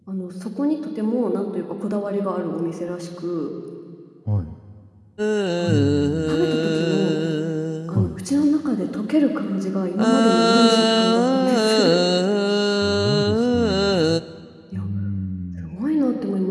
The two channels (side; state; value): both; identical; correlation 1.00